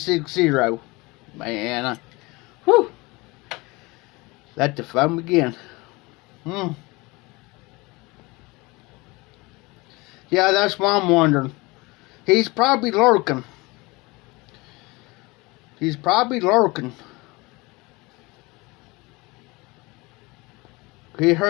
Man, whew. Let the fun begin. Yeah, that's what I'm wondering. He's probably lurking. He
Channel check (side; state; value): right; quieter; 24.0 dB